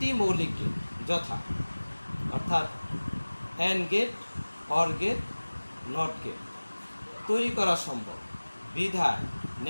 মৌলিক গেট যথা, অর্থাৎ and gate, or gate, not gate তৈরি করা সম্ভব, বিধায়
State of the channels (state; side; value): inverted; both; correlation -1.00